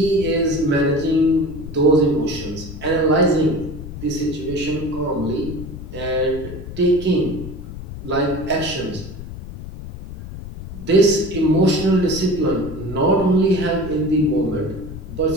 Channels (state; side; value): noise; left; rumble, 11 dB below the sound